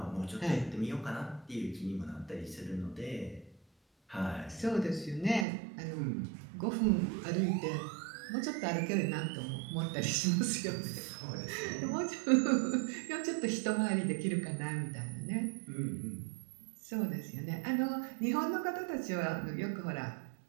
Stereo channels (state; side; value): drops out; left; at 5.5 s